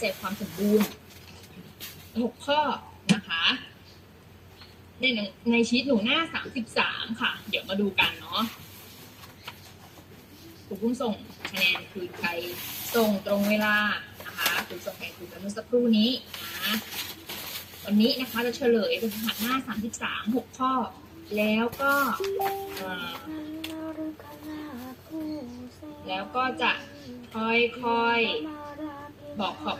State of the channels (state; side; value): identical; both; correlation 1.00